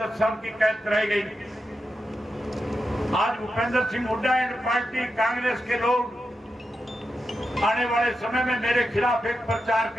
10 साल की कैद कराई गई। आज भूपेंद्र सिंह हुड्डा एंड पार्टी कांग्रेस के लोग आने वाले समय में मेरे खिलाफ एक प्रचार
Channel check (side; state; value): both; normal; correlation 0.88